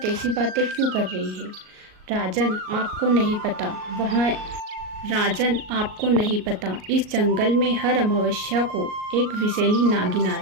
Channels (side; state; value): left; late; 38 ms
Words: ऐसी बातें क्यों कर रही है। राजन, आपको नहीं पता, आपको नहीं पता, इस जंगल में हर अमावस्या को एक विषैली नागिन